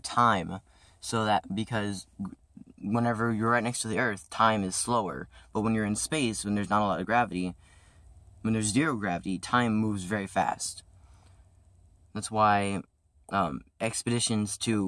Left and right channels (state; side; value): identical; both; correlation 1.00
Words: because whenever you're right next to the Earth, time is slower. But when you're in space, when there's not a lot of gravity, when there's zero gravity, time moves very fast. That's why expeditions